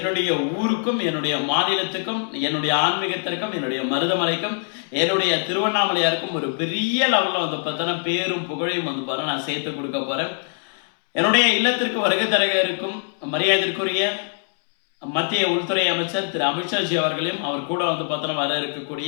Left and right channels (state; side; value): silent; right; 64 dB below the other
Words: ஊருக்கும் என்னுடைய மாநிலத்துக்கும் என்னுடைய ஆன்மீகத்திற்கும் என்னுடைய மருதமலைக்கும் என்னுடைய திருவண்ணாமலையாருக்கும் ஒரு பெரிய லெவலில் வந்து பார்த்தோன்னா பேரும் புகழையும் வந்து பாரு நான் சேர்த்து கொடுக்க போறேன். என்னுடைய இல்லத்திற்கு வருகை தர இருக்கும் மரியாதைக்குரிய மத்திய உள்துறை அமைச்சர் திரு அமித்ஷாஜி அவர்களையும் அவர் கூட வந்து பார்த்தோன்னா வர